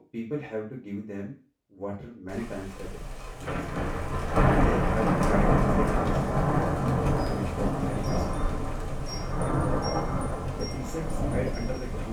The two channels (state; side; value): identical; both; correlation 1.00